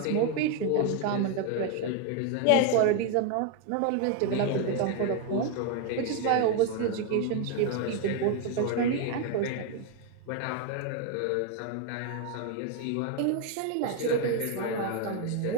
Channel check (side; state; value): both; different; correlation 0.01